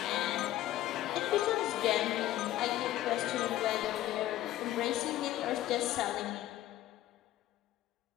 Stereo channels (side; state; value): right; quieter; 14.1 dB